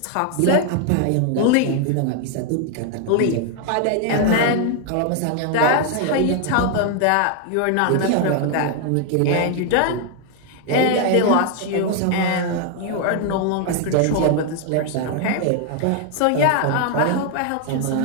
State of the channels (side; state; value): both; different; correlation 0.00